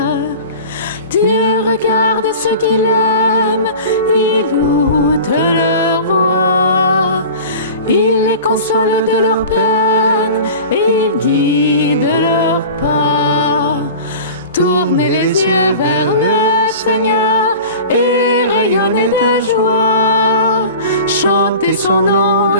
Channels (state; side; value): inverted; both; correlation -0.37